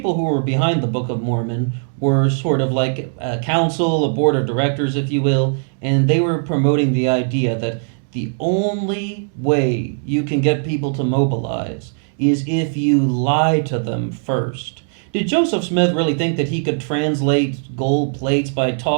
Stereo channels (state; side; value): silent; left; digital silence